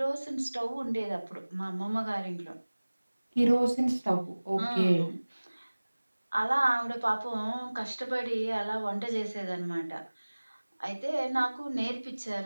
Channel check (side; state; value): both; inverted; correlation -1.00